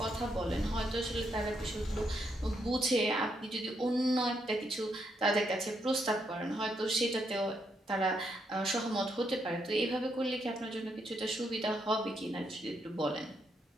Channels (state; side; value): normal; both; correlation 0.77